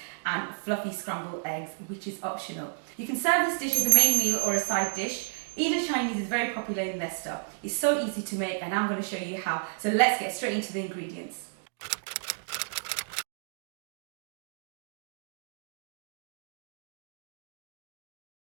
and fluffy scrambled eggs, which is optional. You can serve this dish as a main meal or a side dish. Indo-Chinese is very popular in Leicester. It's so easy to make and I'm going to show you how. So let's get straight into the ingredients.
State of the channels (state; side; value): silent; left; digital silence